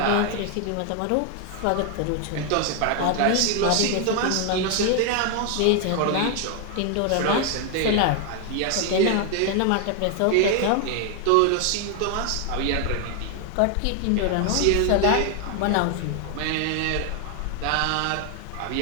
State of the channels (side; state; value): both; different; correlation 0.01